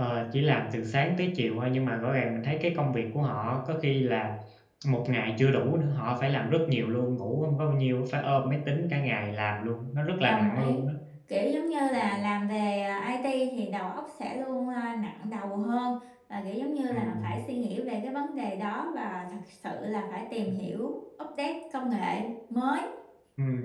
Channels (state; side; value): identical; both; correlation 1.00